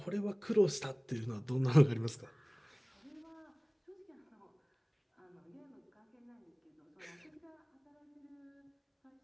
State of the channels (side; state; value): both; identical; correlation 1.00